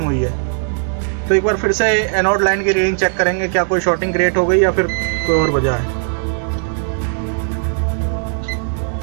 हुई है। तो एक बार फिर से एनोड लाइन की रीडिंग चेक करेंगे, क्या कोई शॉर्टिंग क्रिएट हो गई या फिर कोई और वजह है।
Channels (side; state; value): left; silent; digital silence